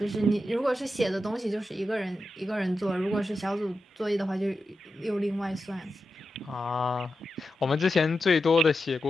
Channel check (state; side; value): normal; both; correlation 0.90